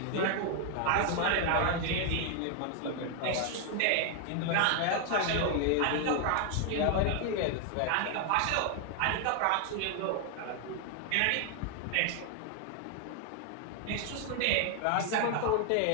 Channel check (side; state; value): both; different; correlation 0.00